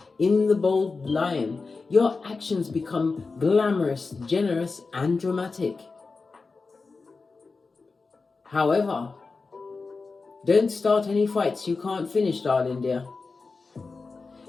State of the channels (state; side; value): quieter; right; 4.2 dB